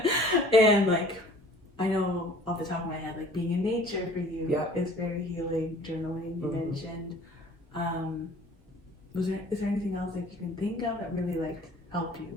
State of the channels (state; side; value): normal; both; correlation 0.50